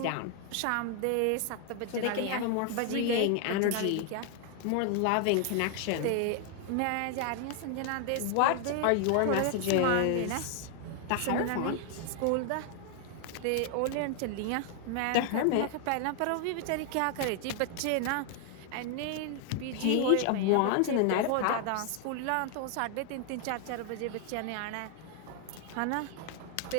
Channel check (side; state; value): both; different; correlation 0.00